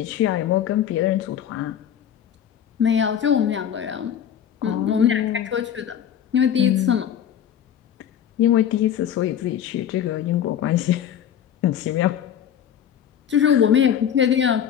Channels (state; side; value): quieter; right; 9.4 dB